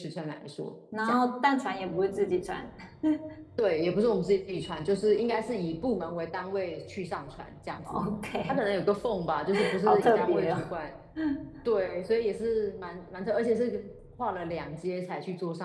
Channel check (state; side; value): identical; both; correlation 1.00